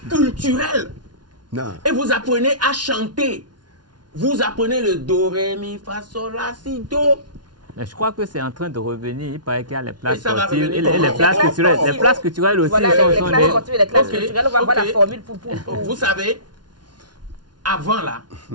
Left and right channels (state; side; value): late; left; 0.70 ms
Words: culturelles. Non. Et vous apprenez à chanter. Vous apprenez le do, ré, mi, fa, sol, la, si, do. Mais je crois que c'est en train de revenir. Il paraît qu'il y a les places Et ça va sportives et revenir les places culturelles. Les places culturelles aussi voilà, sont les classes sportives et les classes culturelles. On va voir la formule pour... Vous savez, avant là,